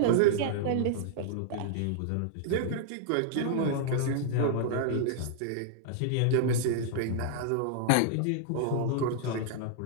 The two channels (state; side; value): different; both; correlation -0.01